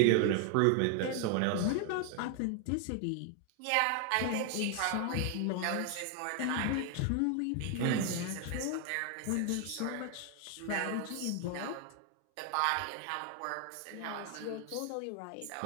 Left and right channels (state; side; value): different; both; correlation 0.00